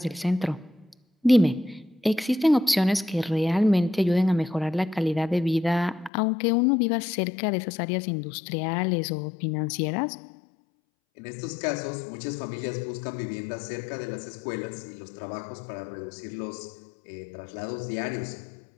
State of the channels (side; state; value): right; drops out; at 6.1 s